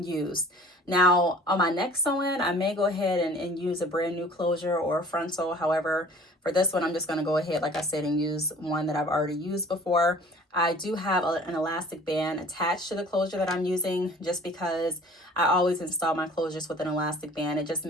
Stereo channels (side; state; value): both; normal; correlation 0.48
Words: Now, on my next sew-in, I may go ahead and use a brand new closure or a frontal. However, for this one, I'm just going to go ahead, like I said, and use one that I've already used before. I do have an elastic band attached to the closure that I'm using just because I always install my closures with an elastic band. It just